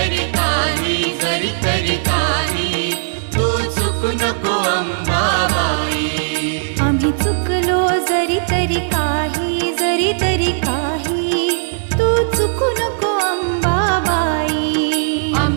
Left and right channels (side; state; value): left; silent; 68 dB below the other